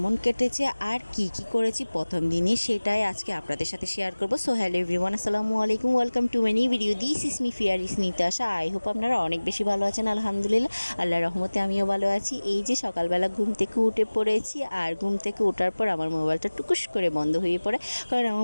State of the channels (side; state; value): both; inverted; correlation -1.00